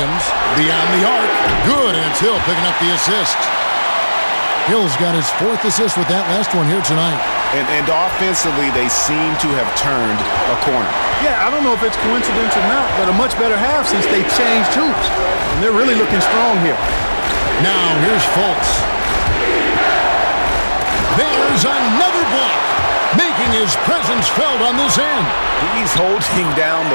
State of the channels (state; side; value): inverted; both; correlation -1.00